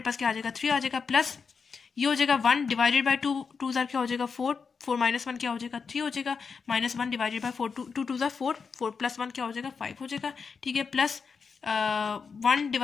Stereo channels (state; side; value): quieter; right; 5.5 dB